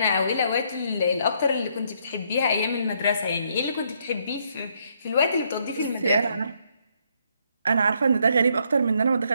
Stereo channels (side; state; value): both; inverted; correlation -0.72